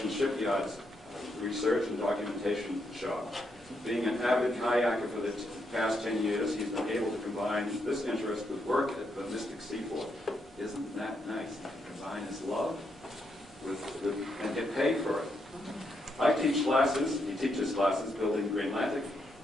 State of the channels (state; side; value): normal; both; correlation 0.79